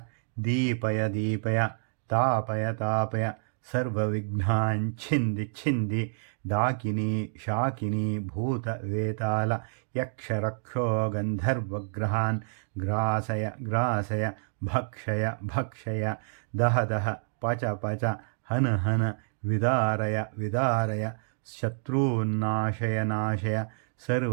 ದೀಪಯ ದೀಪಯ ತಾಪಯ ತಾಪಯ ಸರ್ವವಿಘ್ನಾನ್ ಛಿಂದಿ ಛಿಂದಿ ಡಾಕಿನಿ ಶಾಕಿನಿ ಭೂತ ವೇತಾಲ ಯಕ್ಷ ರಕ್ಷೋ ಗಂಧರ್ವಗ್ರಹಾನ್ ಗ್ರಾಸಯ ಗ್ರಾಸಯ ಭಕ್ಷಯ ಭಕ್ಷಯ ದಹ ದಹ ಪಚ ಪಚ ಹನ ಹನ ವಿದಾರಯ ವಿದಾರಯ ಶತ್ರುನ್ನಾಶಯ ನಾಶಯ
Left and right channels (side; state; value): left; silent; digital silence